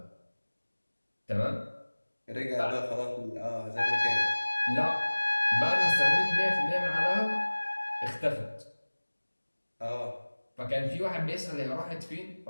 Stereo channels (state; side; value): inverted; both; correlation -1.00